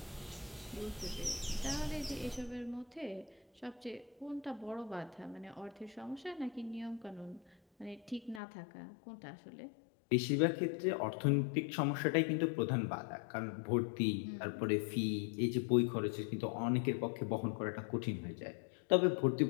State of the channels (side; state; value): right; drops out; at 8.4 s